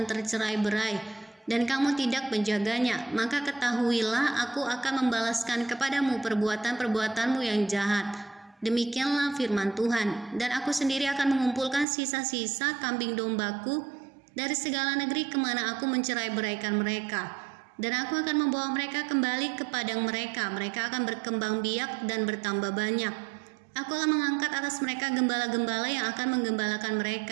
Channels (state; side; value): drops out; left; at 11.9 s